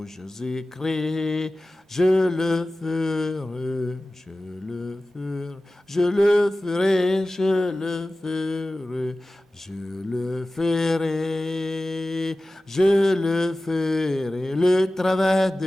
Jésus-Christ. Je le ferai, je le ferai, je le ferai, je le ferai, je le ferai, je le ferai, le travail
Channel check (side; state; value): both; normal; correlation 0.96